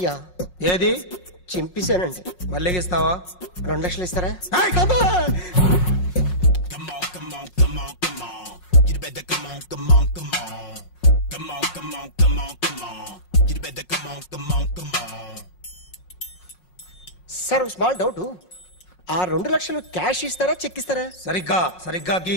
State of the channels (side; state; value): right; late; 5.5 ms